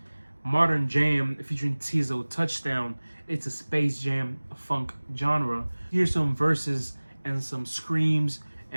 Modern Jam featuring Tizo, Touchdown. It's a space jam funk genre. Here's some verses and some screams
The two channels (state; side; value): inverted; both; correlation -1.00